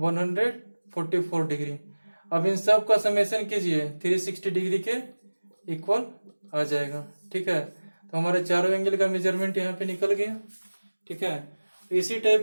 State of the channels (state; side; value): inverted; both; correlation -1.00